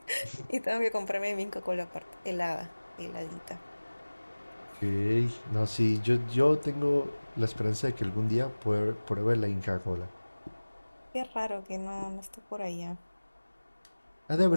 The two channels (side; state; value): both; inverted; correlation -1.00